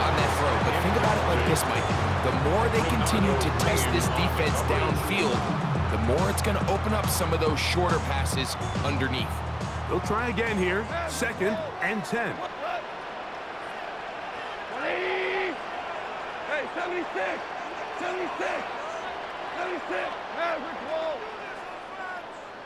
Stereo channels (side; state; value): both; identical; correlation 1.00